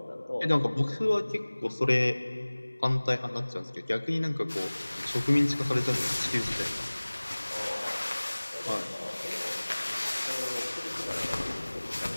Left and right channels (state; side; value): inverted; both; correlation -1.00